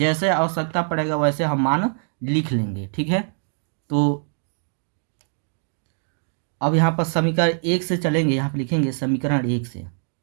आवश्यकता पड़ेगा वैसे हम मान लिख लेंगे, ठीक है। तो अब यहाँ पर समीकरण 1 से चलेंगे, यहाँ पर लिखेंगे समीकरण 1 से,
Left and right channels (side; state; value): left; silent; 63 dB below the other